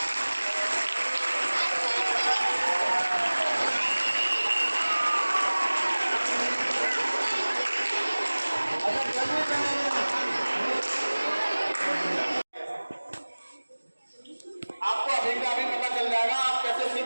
आपको अभी का अभी पता चल जाएगा आप कैसे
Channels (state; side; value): inverted; both; correlation -1.00